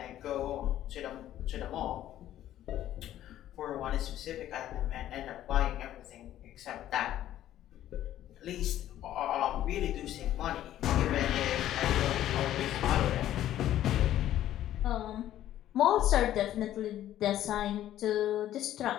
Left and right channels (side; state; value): right; quieter; 12.6 dB